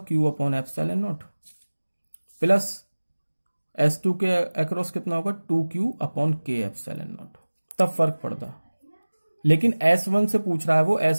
Q upon epsilon not plus S2 के अक्रॉस कितना होगा, 2Q upon K epsilon not, तब फर्क पड़ता। लेकिन S1 से पूछ रहा है वो,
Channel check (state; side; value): inverted; both; correlation -1.00